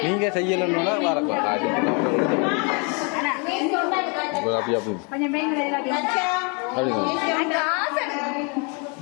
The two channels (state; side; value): quieter; right; 34.4 dB